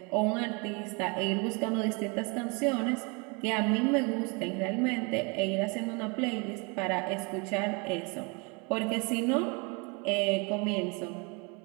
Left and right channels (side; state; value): left; quieter; 31.1 dB